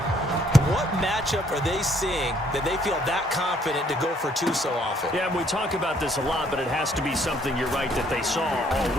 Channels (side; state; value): both; normal; correlation 0.65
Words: what matchup are they seeing that they feel that confident to go for two so often? Yeah, and we talk about this a lot, but it has to be something, you're right, that they saw all